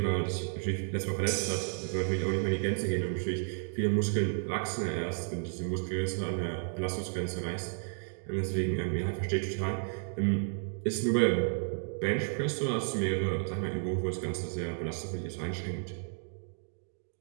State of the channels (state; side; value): silent; left; digital silence